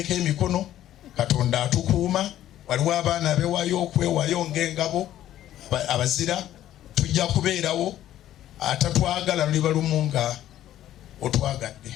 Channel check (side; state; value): right; quieter; 12.6 dB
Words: emikono, Katonda atukuuma. Waliwo abaana abewaayo okwewaayo ng'engabo abazira, tujja kubeerawo. Atatwagala luliba lumu nga otwagadde.